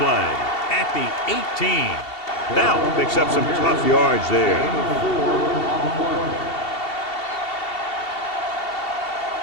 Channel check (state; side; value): late; right; 2.7 ms